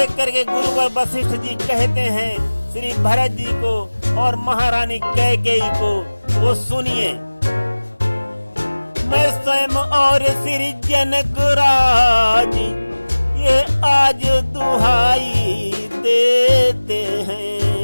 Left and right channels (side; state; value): both; inverted; correlation -1.00